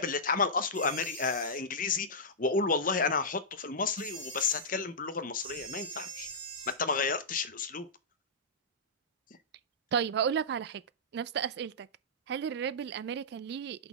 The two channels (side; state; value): both; normal; correlation -0.15